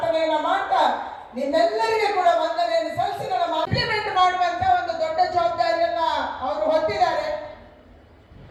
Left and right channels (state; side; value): identical; both; correlation 1.00